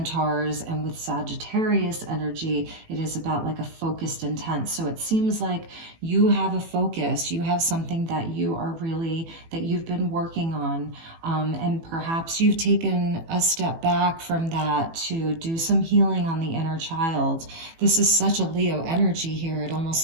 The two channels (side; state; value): left; late; 18 ms